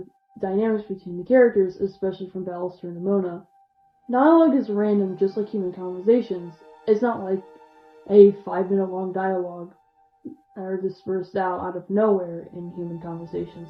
dynamics between the characters, especially from Ballister and Nimona. Dialogue is random, just like human conversations. It's not like a 5-minute long dialogue that are dispersed out of nowhere in human conversations.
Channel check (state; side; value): identical; both; correlation 1.00